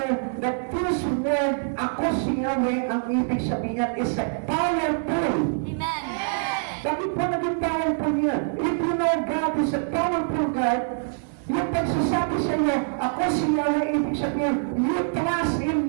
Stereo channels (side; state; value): left; silent; 62 dB below the other